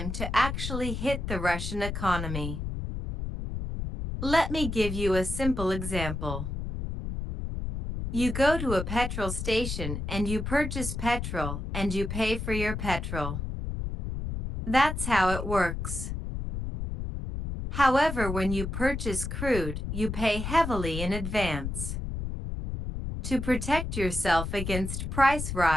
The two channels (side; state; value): left; noise; rumble, 4 dB below the sound